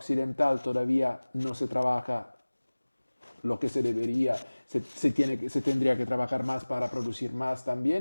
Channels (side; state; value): both; inverted; correlation -1.00